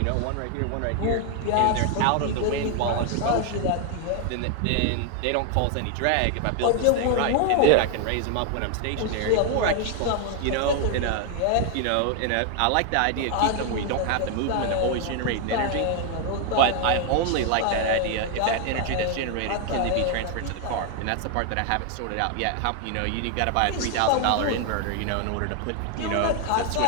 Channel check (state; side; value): different; both; correlation 0.01